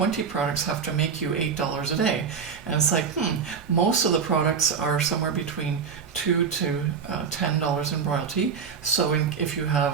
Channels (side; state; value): left; quieter; 6.2 dB